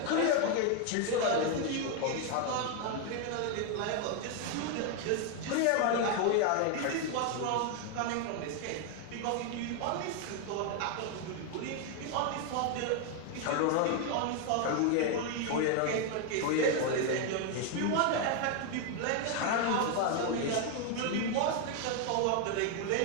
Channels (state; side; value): different; both; correlation 0.01